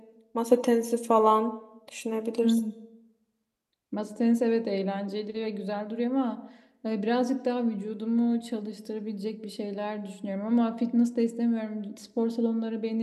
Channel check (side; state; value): both; identical; correlation 1.00